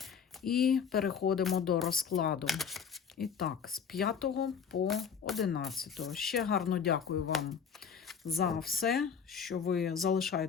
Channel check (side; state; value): right; quieter; 6.8 dB